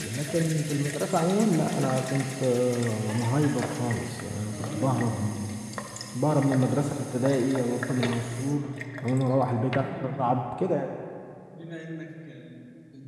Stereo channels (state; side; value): identical; both; correlation 1.00